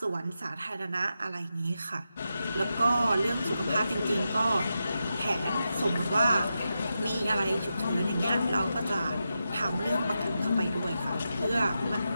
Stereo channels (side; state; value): both; inverted; correlation -0.89